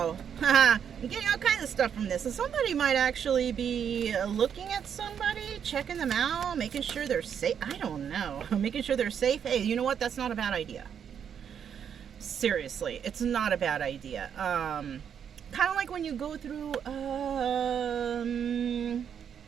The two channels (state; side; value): quieter; left; 8.0 dB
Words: You're getting all kinds of stuff from this. So somebody might actually be looking at somebody, checking them out, making sure they're safe. I don't know. Making sure they're safe. Hey, you know what? That's not a bad idea. Seriously, it's not a bad idea. Kind of like when you go through, I